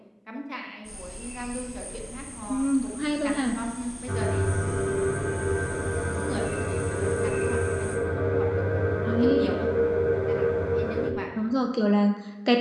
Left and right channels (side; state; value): both; identical; correlation 1.00